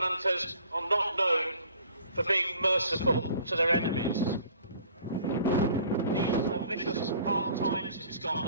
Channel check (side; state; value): both; inverted; correlation -0.53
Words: are not known for being merciful to their enemies. These are vicious hard times in